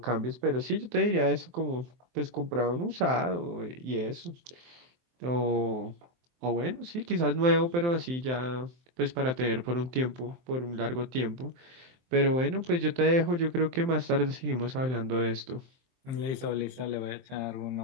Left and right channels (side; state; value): left; late; 23 ms